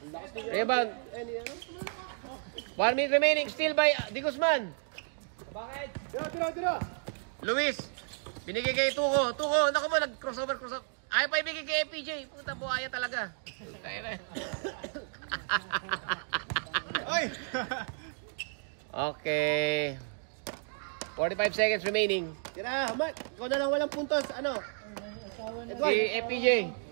Rebound. 1 minute remaining, still by Di Guzman. Tira. Luis, binigay kay Tuko, naku mo, nag-crossover. Ayaw pa ibigay kay FPJ. Puta, buhaya talaga. Tayo na. Oy! Okay. 45 seconds remaining. Tira, Mark. Ikaw na lang walang puntos. Ano? Edward. Si FPJ.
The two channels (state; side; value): silent; left; 56 dB below the other